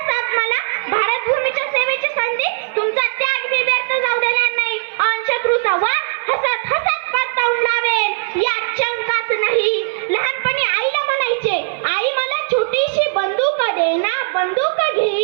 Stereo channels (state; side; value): silent; left; 55 dB below the other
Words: साथ मला भारत भूमीच्या सेवेची संधी. तुमचा